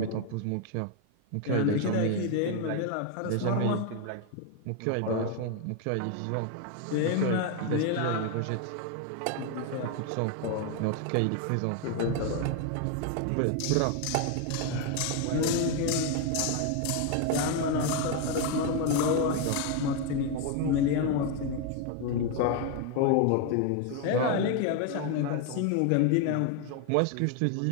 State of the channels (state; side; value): different; both; correlation 0.01